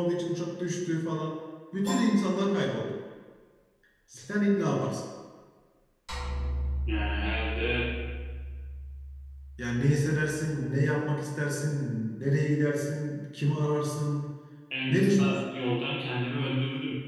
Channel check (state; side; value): identical; both; correlation 1.00